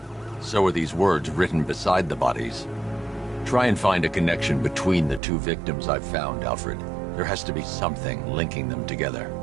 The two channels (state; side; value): drops out; left; at 5.2 s